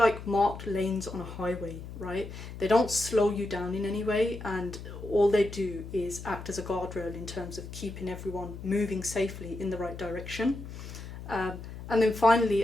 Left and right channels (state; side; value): noise; left; hum, 11 dB below the sound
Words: marked lanes on a highway, right? They don't slow you down in any way, and all they do is act as a guardrail in terms of keeping everyone moving safely in the right direction. And then